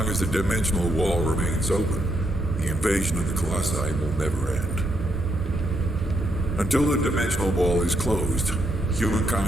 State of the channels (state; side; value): normal; both; correlation 0.77